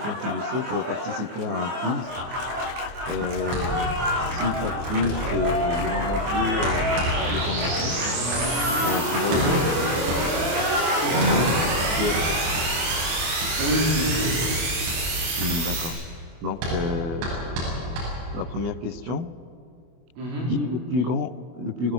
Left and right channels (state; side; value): late; left; 24 ms